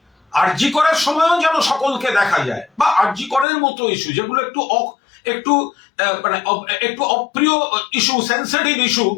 আরজি করার সময়ও যেন সকলকে দেখা যায়, বা আরজি করার মতো ইস্যু যেগুলো একটু অপ্রিয় ইস্যু, সেন্সিটিভ ইস্যু,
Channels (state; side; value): drops out; right; at 3.5 s